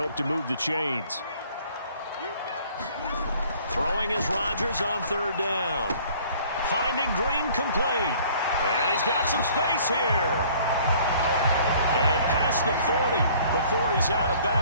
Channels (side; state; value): both; inverted; correlation -0.55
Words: to move the chains. Throwing is Rodgers on 3rd down. Finding Green complete. And he's got some space here. And past the 40 before he's out of